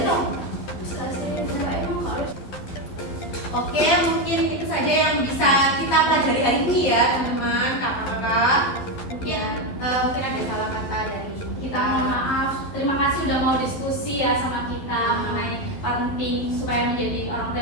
Oke, mungkin itu saja yang bisa kita pelajari hari ini ya teman-teman, kakak-kakak. Mungkin mungkin ada salah kata dari Kita mohon maaf. Terima kasih udah mau diskusi ya sama kita mengenai parenting supaya menjadi orang tua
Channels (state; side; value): late; right; 12 ms